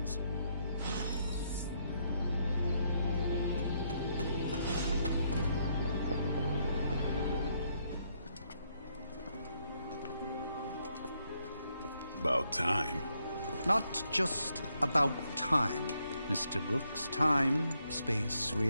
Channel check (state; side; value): inverted; both; correlation -0.75